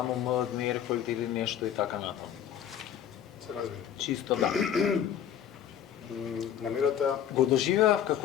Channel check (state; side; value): quieter; right; 9.7 dB